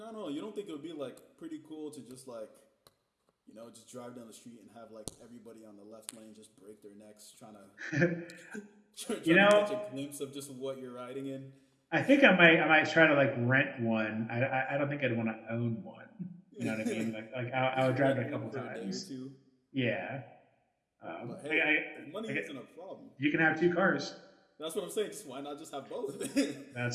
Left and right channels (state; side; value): identical; both; correlation 1.00